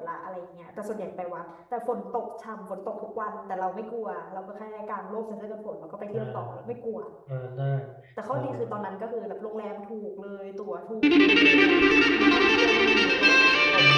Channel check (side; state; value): both; identical; correlation 1.00